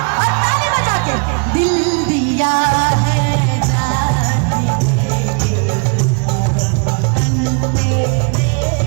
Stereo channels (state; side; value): quieter; left; 36.1 dB